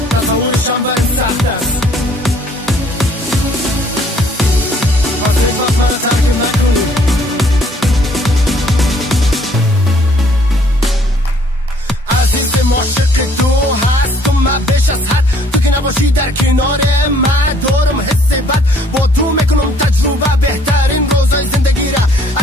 تصورشم برای سخت است، پس یک وقت برای ترک نکنی. عزیز معاشق تو هست و من بیش از حد، تو که نباشی در کنار من دارم حس بد، با تو میکنم تجربه بهترین روزای زندگی را.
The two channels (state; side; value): normal; both; correlation 0.61